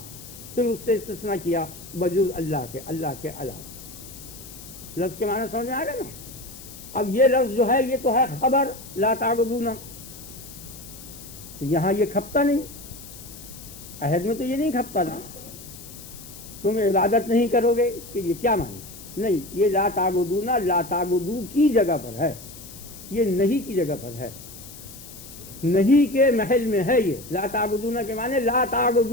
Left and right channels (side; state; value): left; noise; hiss, 16 dB below the sound